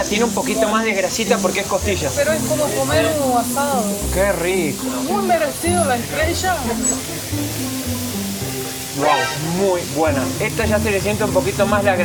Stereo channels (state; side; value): identical; both; correlation 1.00